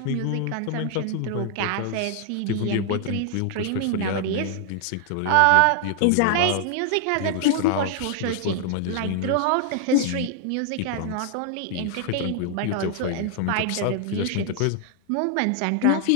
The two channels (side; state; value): both; different; correlation 0.00